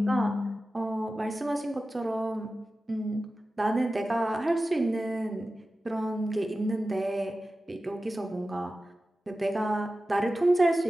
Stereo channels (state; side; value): normal; both; correlation 0.94